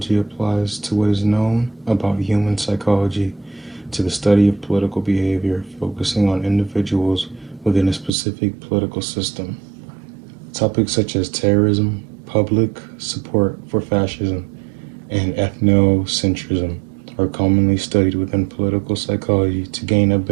applies to what is known about human psychology to the study of political behavior, focusing on individuals within a specific political system. Topics such as terrorism, public support for fascism, and ethnocentrism are commonly studied within political psychology to gain a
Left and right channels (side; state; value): left; drops out; at 8.1 s